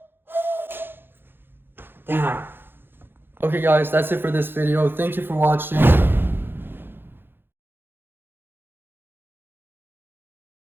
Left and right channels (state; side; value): late; left; 0.10 ms